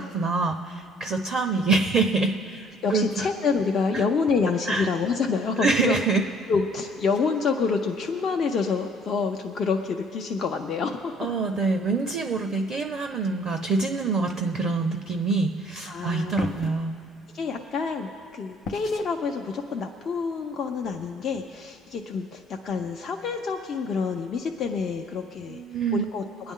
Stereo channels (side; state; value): both; normal; correlation 0.58